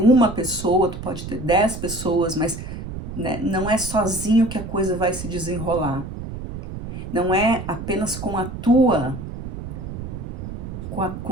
pessoa, tu pode ter 10 pessoas, mas né, não é sozinho que a coisa vai se desenrolar. Não é apenas com a tua,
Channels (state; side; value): noise; right; rumble, 8 dB below the sound